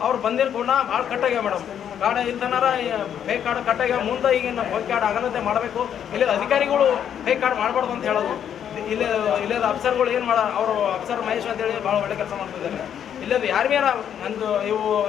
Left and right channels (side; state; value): right; quieter; 9.1 dB